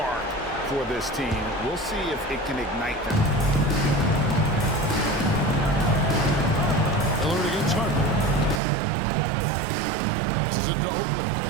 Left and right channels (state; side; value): drops out; left; at 8.6 s